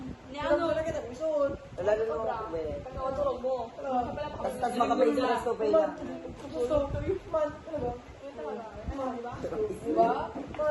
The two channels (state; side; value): identical; both; correlation 1.00